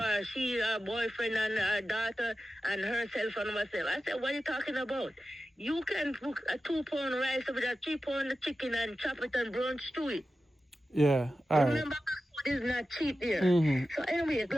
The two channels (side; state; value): both; normal; correlation 0.93